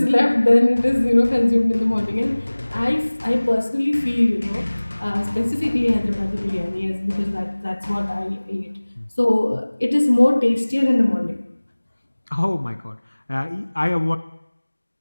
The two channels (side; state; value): both; inverted; correlation -1.00